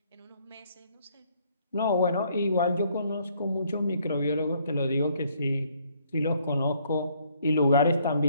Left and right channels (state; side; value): inverted; both; correlation -0.66